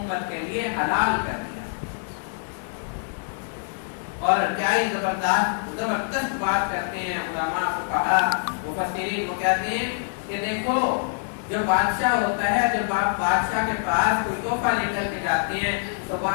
کے لیے حلال کر دیا. اور کیا ہی زبردست بات کرتے ہیں علماء فقہاء مفسرین. وہ کہتے ہیں کہ دیکھو جو بادشاہ ہوتا ہے، جب آپ بادشاہ کے پاس کوئی تحفہ لے کر کے جاتے ہیں تو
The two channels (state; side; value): silent; right; 61 dB below the other